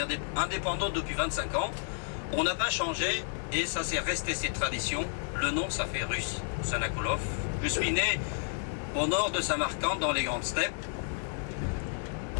indépendant depuis 25 ans. On n'a pas changé et ça c'est resté cette tradition. Le nom, ça fait russe, Sanakoulov. Je suis né au nord de Samarcande, dans les grandes steppes,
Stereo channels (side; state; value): right; silent; 57 dB below the other